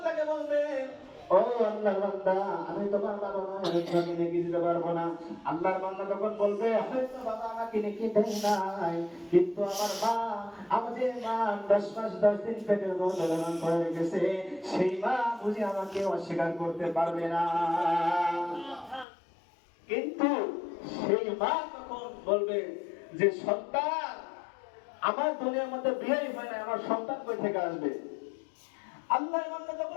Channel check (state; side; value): drops out; right; at 19.1 s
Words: বলবে, ও আল্লাহর বান্দা, আমি তোমার বাবা নয়, আমি তোমাকে নেকি দিতে পারবো না। আল্লাহর বান্দা তখন বলবে, হয়তো বাবা আমাকে নেকি দেয় নাই, কিন্তু আমার মা, আমার যে মা 10 মাস 10 দিন পেটের মধ্যে লালন করে রেখেছে, সেই মা বুঝি আমাকে অস্বীকার করতে পারবে না। কিন্তু সেই মা তখন বলবে যে, সন্তান, আমার দুনিয়ার মধ্যে বিয়েই হয় না, আমার সন্তান কই থেকে আসবে? আল্লাহর বান্দা